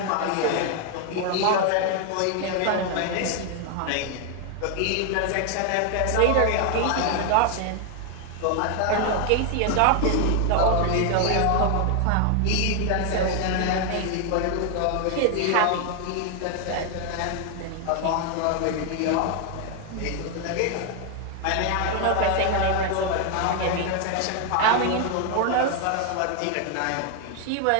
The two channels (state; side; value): different; both; correlation 0.00